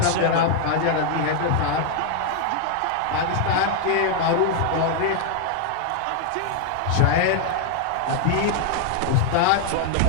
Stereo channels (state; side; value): different; both; correlation 0.00